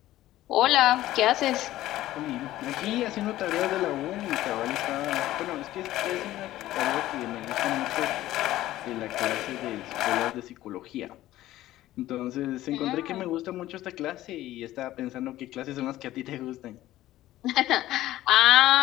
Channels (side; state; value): right; quieter; 14.9 dB